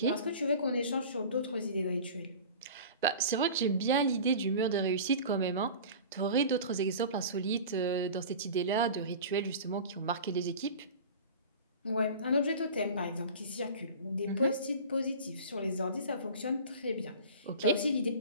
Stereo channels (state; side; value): inverted; both; correlation -0.37